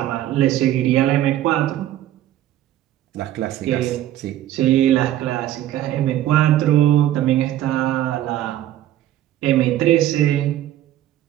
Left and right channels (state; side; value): quieter; left; 12.9 dB